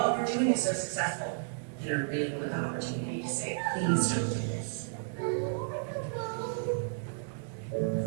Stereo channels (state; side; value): silent; left; digital silence